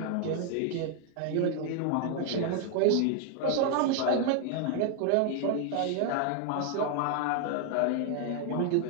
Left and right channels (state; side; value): different; both; correlation 0.00